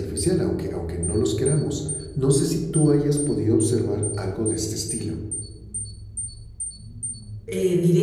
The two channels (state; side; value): identical; both; correlation 1.00